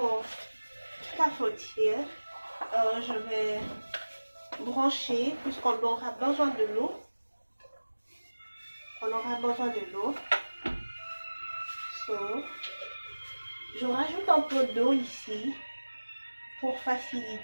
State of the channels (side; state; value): both; inverted; correlation -1.00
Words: cafetière. Je vais brancher, puisqu'on aura besoin de l'eau. On aura besoin de l'eau. Je rajoute un peu d'eau ici pour